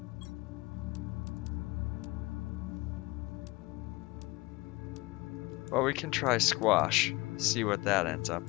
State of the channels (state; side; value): quieter; right; 22.2 dB